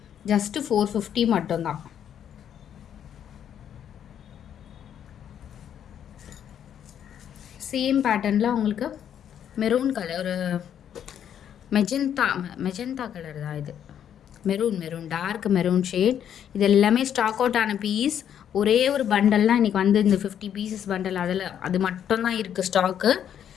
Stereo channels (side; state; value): right; quieter; 9.4 dB